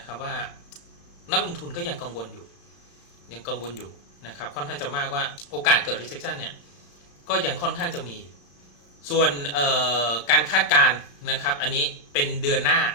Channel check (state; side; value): late; right; 33 ms